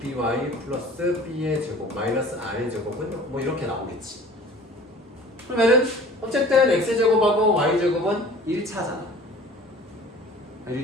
플러스 b의 제곱 마이너스 r의 제곱은 뭐 이렇게 나오겠지. 그러면은 어쨌든 x제곱하고 y제곱은 1차잖아.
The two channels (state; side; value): normal; both; correlation 0.45